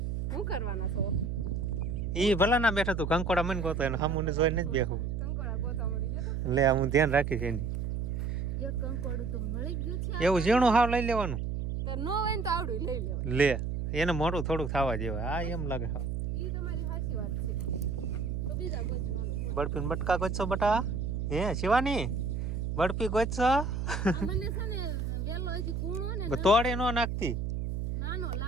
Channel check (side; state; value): right; noise; hum, 2 dB below the sound